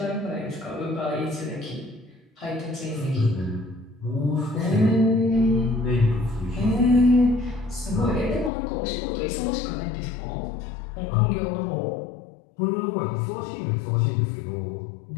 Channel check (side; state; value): right; drops out; at 8.5 s